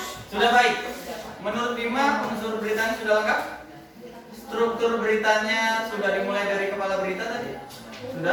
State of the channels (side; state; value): both; identical; correlation 1.00